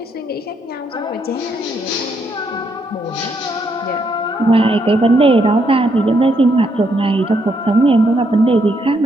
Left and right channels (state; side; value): normal; both; correlation 0.75